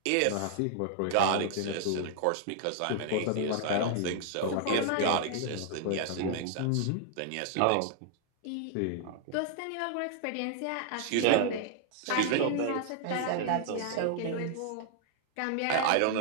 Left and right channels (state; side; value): different; both; correlation 0.00